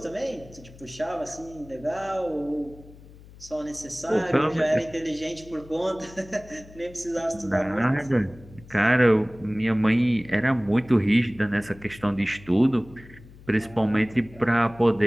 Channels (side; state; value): left; noise; hum, 21 dB below the sound